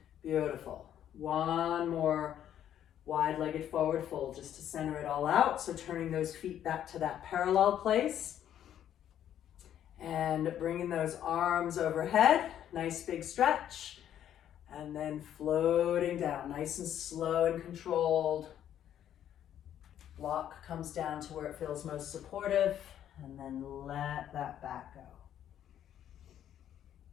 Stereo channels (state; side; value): quieter; right; 10.5 dB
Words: Beautiful. One more wide-legged forward fold just to center it all out. So turning those feet back to that parallel place and bringing those arms overhead. Nice big stretch. And then floating down, nice and slow and controlled. Block comes down to where it feels most supportive, and then let that back go.